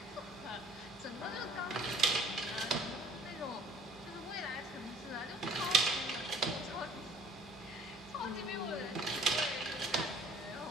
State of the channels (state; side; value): normal; both; correlation 0.52